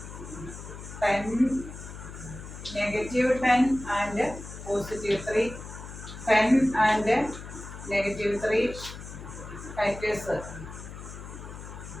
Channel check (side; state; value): left; noise; hum, 12 dB below the sound